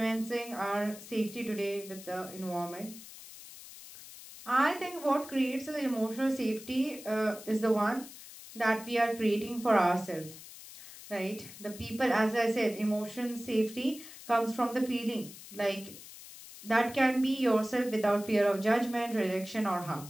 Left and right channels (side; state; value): left; noise; hiss, 16 dB below the sound